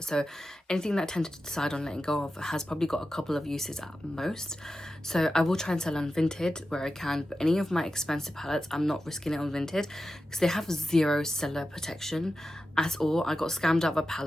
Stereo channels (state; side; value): normal; both; correlation 0.92